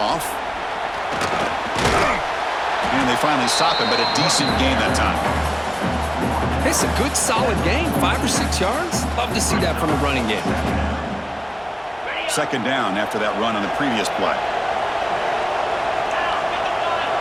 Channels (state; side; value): identical; both; correlation 1.00